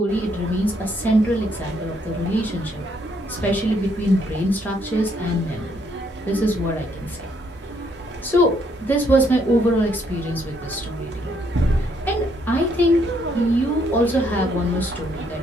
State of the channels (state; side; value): normal; both; correlation 0.71